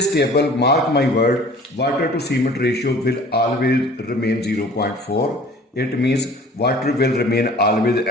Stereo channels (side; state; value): both; normal; correlation 0.48